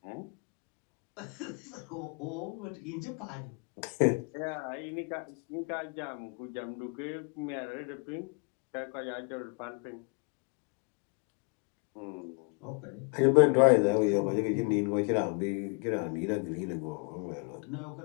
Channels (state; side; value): quieter; right; 34.0 dB